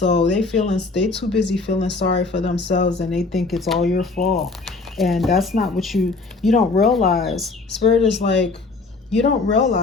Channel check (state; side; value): quieter; right; 3.8 dB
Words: they too busy feeling sorry for themselves, and they think it's all your fault. And that's not what you don't realize. Spirit is like, you don't